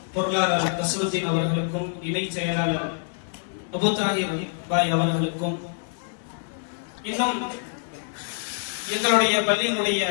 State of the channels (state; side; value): silent; right; 61 dB below the other